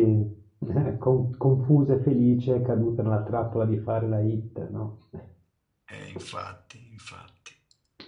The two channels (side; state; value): both; identical; correlation 1.00